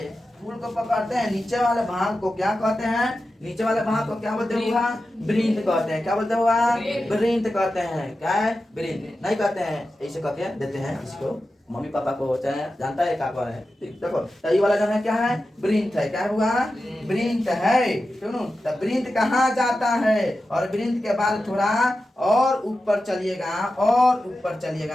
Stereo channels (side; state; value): both; normal; correlation 0.92